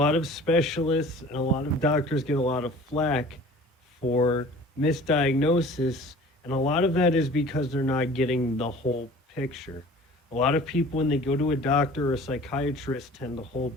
of specialists and a lot of doctors get a lot of flack for misdiagnosis, and a lot of that is because they're not getting the whole picture. A lot of people, when they go to a doctor or a psychiatrist, tend to hold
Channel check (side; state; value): both; normal; correlation 0.46